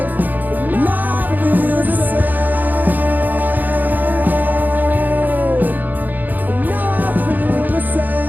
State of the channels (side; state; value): left; late; 0.085 ms